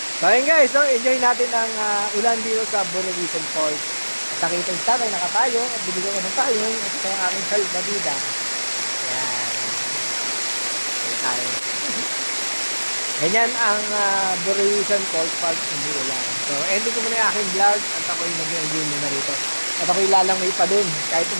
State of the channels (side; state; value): both; inverted; correlation -1.00